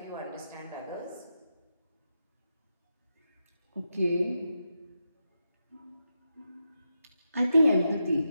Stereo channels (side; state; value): both; inverted; correlation -0.87